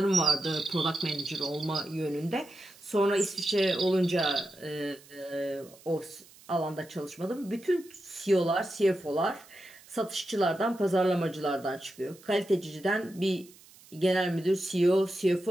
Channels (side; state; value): right; noise; hiss, 24 dB below the sound